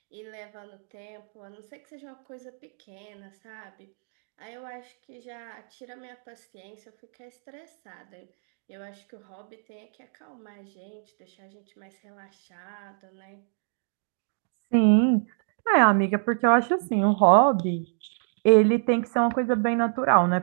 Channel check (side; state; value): left; silent; digital silence